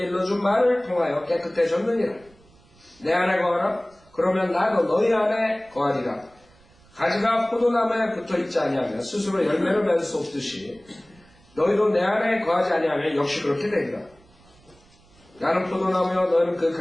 일러준 말을 통하여 깨끗해졌느니라. 내 안에 거하라. 그러면 나도 너희 안에 거하리라. 가지가 포도나무에 붙어있지 아니하면 스스로 열매를 맺을 수 없듯이 너희도 내 안에 거하지 아니하면 역시 그렇게 되리라. 나는 포도나무여 너희는 그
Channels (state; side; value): noise; right; rumble, 29 dB below the sound